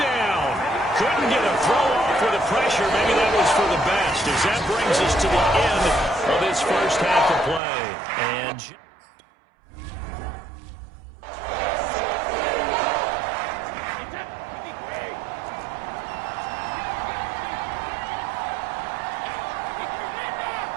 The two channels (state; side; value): drops out; left; at 7.6 s